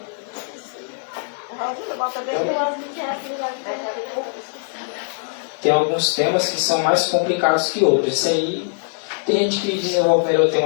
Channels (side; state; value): right; silent; 65 dB below the other